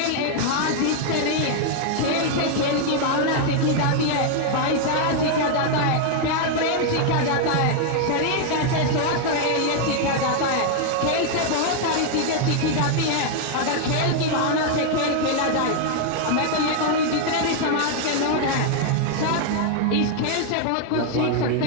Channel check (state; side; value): different; both; correlation 0.00